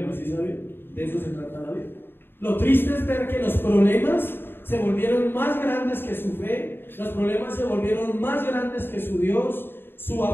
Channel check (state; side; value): late; right; 0.10 ms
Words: ¿sí saben? De eso se trata la vida. Lo triste es ver que los problemas se volvieron más grandes que su fe, los problemas se volvieron más grandes que su Dios, su